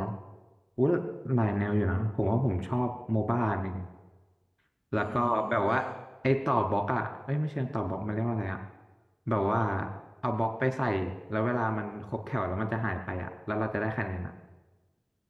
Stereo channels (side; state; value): both; identical; correlation 1.00